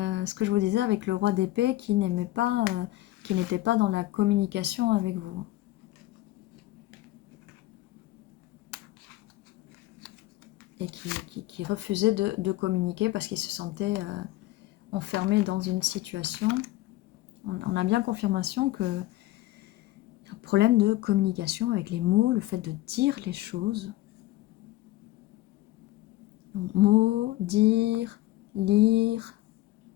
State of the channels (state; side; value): quieter; right; 16.9 dB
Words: ce que je vous disais avec le roi d'épée qui n'aimait pas, qui n'était pas dans la communication avec vous. Et qui refusait de communiquer parce qu'il se sentait enfermé dans une situation. On a bien confirmation que un problème de communication avec les mots, le fait de dire les choses. Donc, mots, dire, lire.